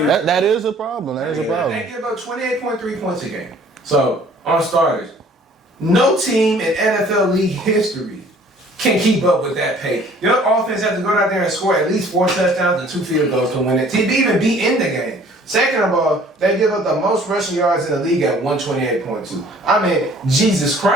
that is a problem. That is a problem. They give up 28.3 points a game. So, on starters, no team in NFL league history can keep up with that pace. Your offense has to go out there and score at least 4 touchdowns and 2 field goals to win it, to even be in the game. Second of all, they give up the most rushing yards in the league at 128.2. I mean, Jesus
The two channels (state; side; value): normal; both; correlation 0.54